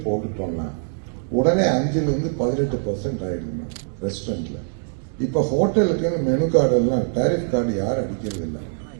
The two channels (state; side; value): silent; left; digital silence